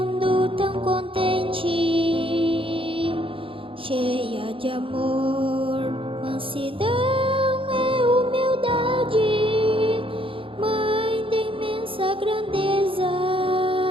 tão contente, cheia de amor, mansidão e humildade, mãe de imensa grandeza,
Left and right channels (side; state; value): left; late; 0.26 ms